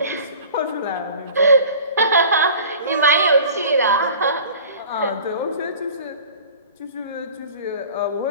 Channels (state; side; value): inverted; both; correlation -0.44